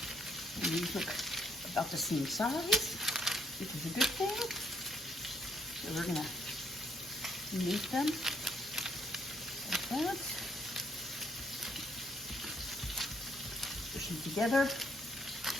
And these look about the same size, which is a good thing. So we're gonna make them like that. Push them together.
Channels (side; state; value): both; normal; correlation 0.70